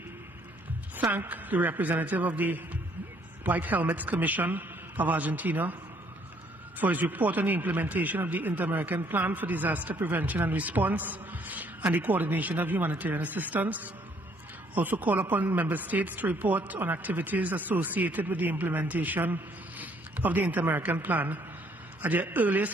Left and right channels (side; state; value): both; normal; correlation 0.65